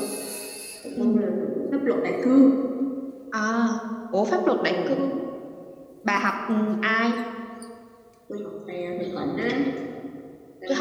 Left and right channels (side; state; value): both; identical; correlation 1.00